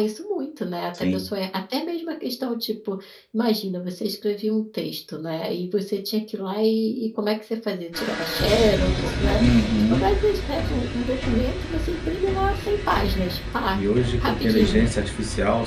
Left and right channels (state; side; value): identical; both; correlation 1.00